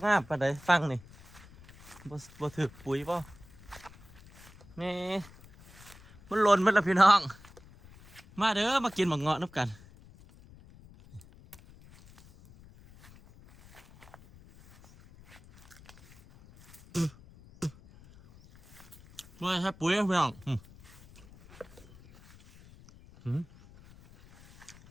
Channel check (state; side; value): noise; left; rumble, 22 dB below the sound